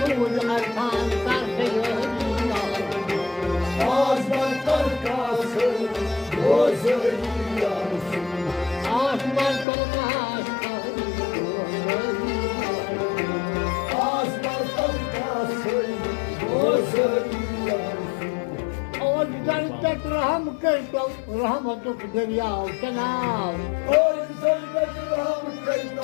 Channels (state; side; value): drops out; right; at 9.7 s